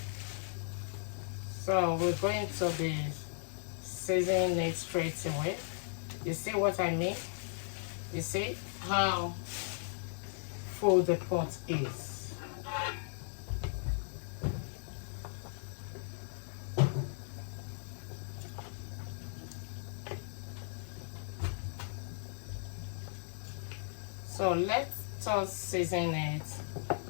So we're going to be seasoning it straight away. You see what I mean? You see how full the pot is. So let us season it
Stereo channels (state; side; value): silent; right; 53 dB below the other